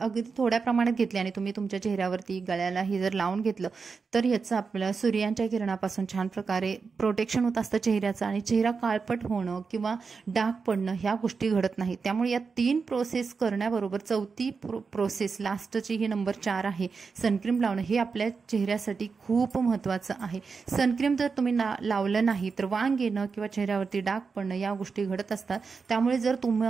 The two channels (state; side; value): quieter; left; 5.1 dB